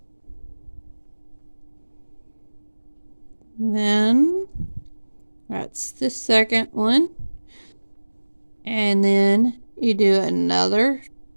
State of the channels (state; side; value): inverted; both; correlation -1.00